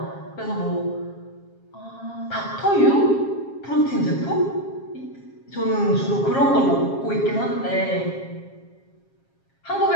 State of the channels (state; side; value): late; right; 7.4 ms